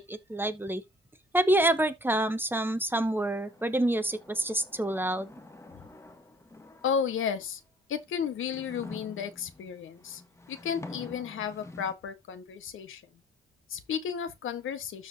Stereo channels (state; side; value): normal; both; correlation 0.53